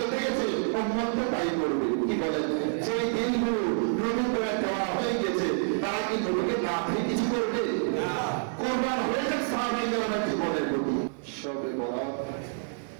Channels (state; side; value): silent; left; 59 dB below the other